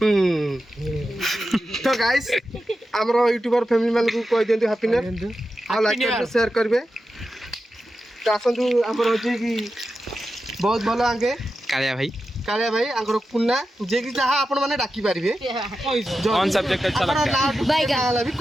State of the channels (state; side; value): normal; both; correlation 0.91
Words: तो गाइस हमरो यूट्यूबर फैमिली मानु को कहि देंतु हैप्पी न्यू ईयर आ लाइक कर शेयर करबे। तो आसंतु हमरो जे कि बहुत भलो आगे कालिया भाई आंकर कुन्ना जे कि जहा आपण माने डाकी पारिबे ऑन सब्जेक्ट अच्छा लगता है बाय गाला भी